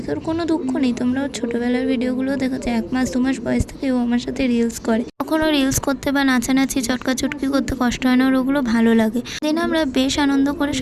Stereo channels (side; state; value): both; identical; correlation 1.00